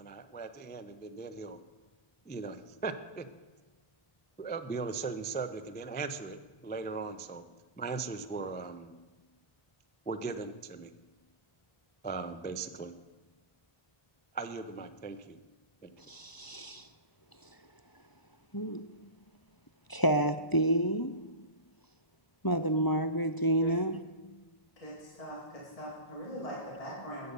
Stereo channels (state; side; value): late; right; 1.0 ms